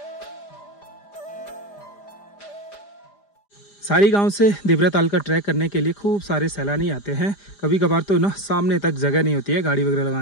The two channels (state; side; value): late; right; 5.0 ms